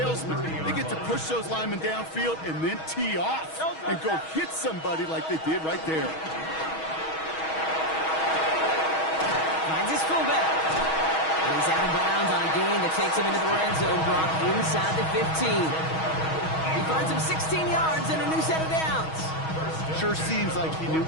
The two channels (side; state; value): right; late; 6.3 ms